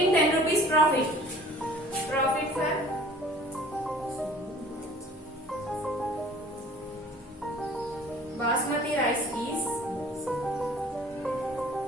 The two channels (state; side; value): normal; both; correlation 0.49